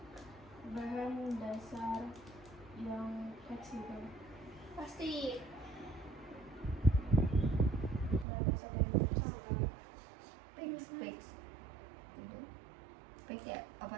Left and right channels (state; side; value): drops out; left; at 8.2 s